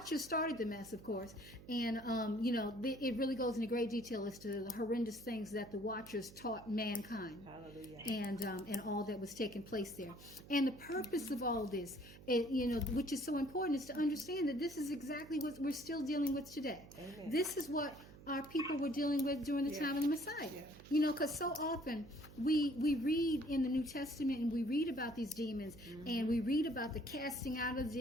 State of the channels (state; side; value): noise; right; hum, 18 dB below the sound